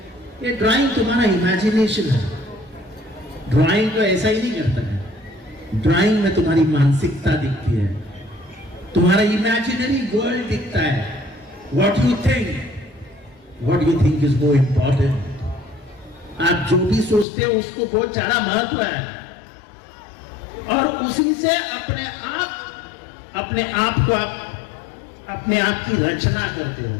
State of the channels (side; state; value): right; drops out; at 17.2 s